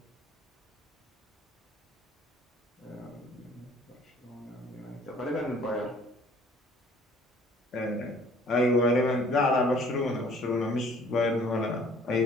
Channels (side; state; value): both; normal; correlation 0.55